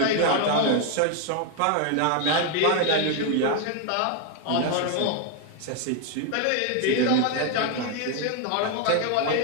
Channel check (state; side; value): different; both; correlation 0.01